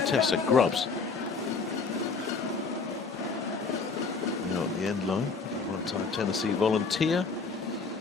Tessa Grubbs. Now at the end line, one-time Tennessee volunteer.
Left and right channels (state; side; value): quieter; right; 4.6 dB